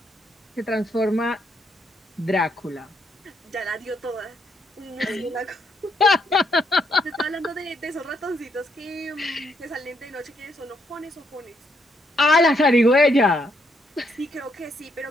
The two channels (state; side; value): normal; both; correlation 0.75